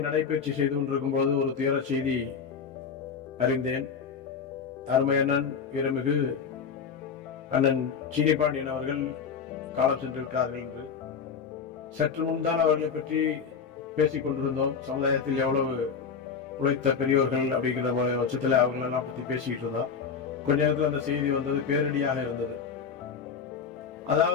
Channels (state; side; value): quieter; right; 6.2 dB